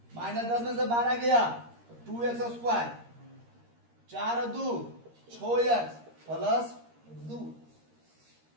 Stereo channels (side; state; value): left; late; 13 ms